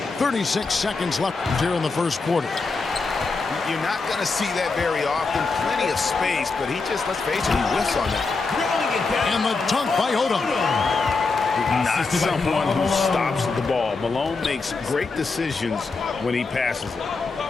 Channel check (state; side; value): quieter; right; 4.1 dB